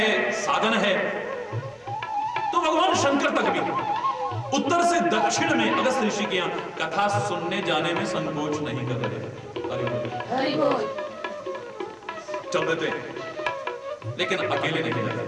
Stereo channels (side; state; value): both; identical; correlation 1.00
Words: साधन है, तो भगवान शंकर तक भी उत्तर से दक्षिण में अगस्त ऋषि के यहां कथा सुनने जाने में संकोच नहीं कर रहे। हरि बोल। चल देते हैं, लेकिन अकेले नहीं जाते।